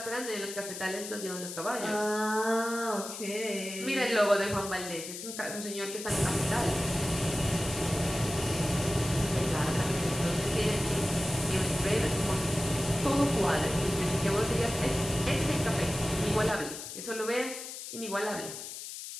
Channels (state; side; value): noise; left; hiss, 9 dB below the sound